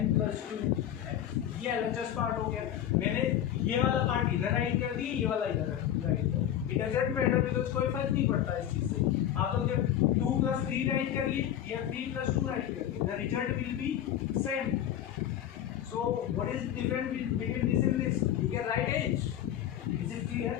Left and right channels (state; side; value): quieter; right; 10.9 dB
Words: plus 2x। ये एलएचएस पार्ट हो गया। मैंने ये वाला पार्ट इधर राइट कर दिया, ये वाला इधर राइट कर, इट डजंट मैटर बिकॉज़ कोई फर्क नहीं पड़ता इस चीज से। आप लोग जब 2 प्लस 3 राइट करिए या 3 प्लस 2 राइट करिए, the result will be same. So what is different between this and this, you can write it. Is it clear